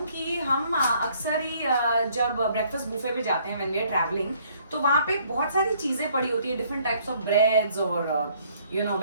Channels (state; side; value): inverted; both; correlation -0.63